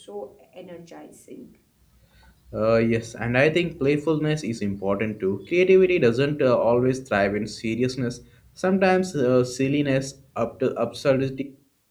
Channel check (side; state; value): both; identical; correlation 1.00